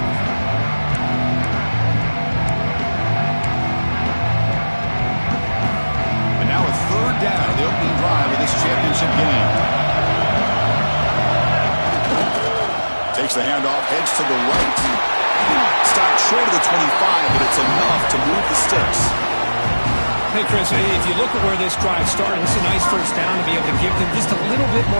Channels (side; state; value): both; inverted; correlation -1.00